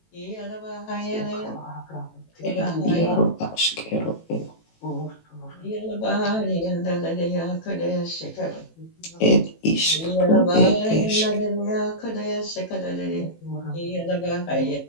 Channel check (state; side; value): late; right; 18 ms